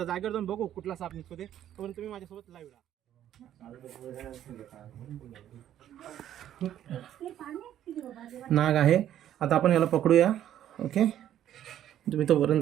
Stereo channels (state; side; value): quieter; left; 11.3 dB